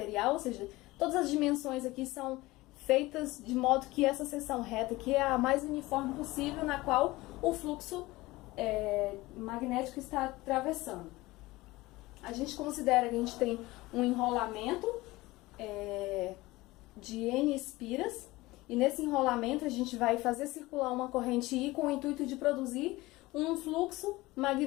ou seja, todas as dimensões aqui são feitas de modo que essa seção reta aqui é a mais uniforme possível, na qual o fluxo magnético está atravessando. A gente considera que a gente tem um enrolamento de N espiras, e nesse enrolamento a gente vai fazer circular uma corrente I com o intuito de produzir um fluxo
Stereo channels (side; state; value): right; quieter; 19.9 dB